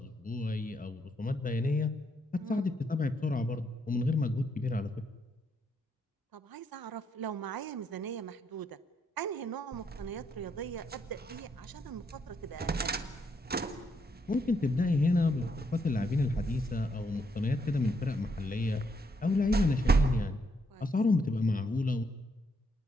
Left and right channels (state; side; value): normal; both; correlation 0.76